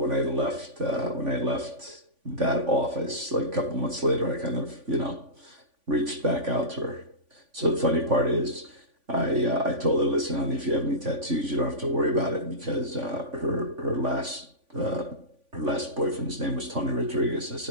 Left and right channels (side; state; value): left; late; 3.5 ms